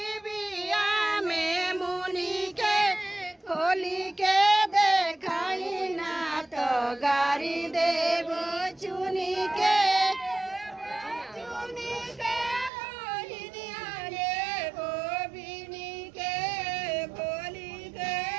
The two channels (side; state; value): left; drops out; at 12.7 s